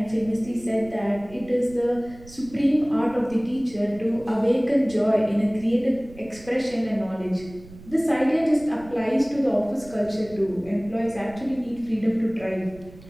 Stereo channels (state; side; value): noise; right; rumble, 20 dB below the sound